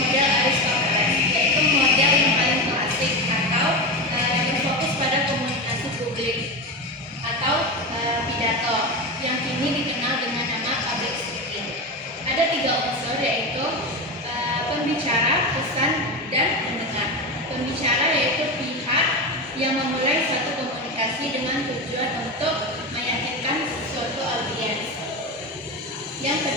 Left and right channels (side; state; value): both; normal; correlation 0.20